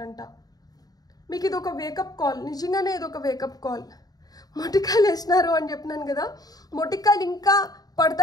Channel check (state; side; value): late; right; 0.18 ms